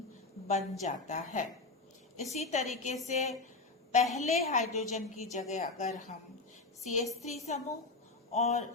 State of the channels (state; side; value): quieter; right; 3.5 dB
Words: बन जाता है। इसी तरीके से पहले हाइड्रोजन की जगह अगर हम CH3 समूह और